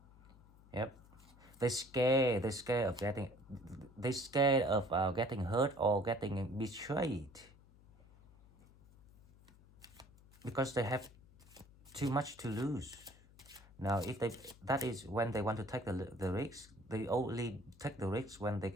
Yep. They're scared of getting, they're scared of getting hurt or getting betrayed. Because they have too much to lose. Now, if they, that is when they want to take the risk. They only take the risk when they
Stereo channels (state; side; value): noise; left; hum, 25 dB below the sound